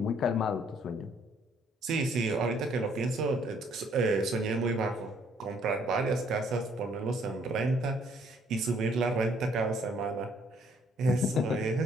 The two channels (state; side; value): normal; both; correlation 0.65